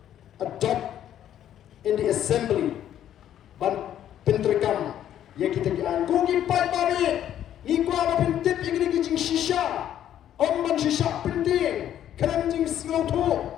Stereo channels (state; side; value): quieter; right; 10.9 dB